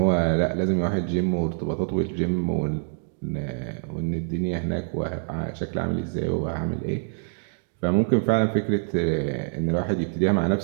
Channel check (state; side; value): silent; left; digital silence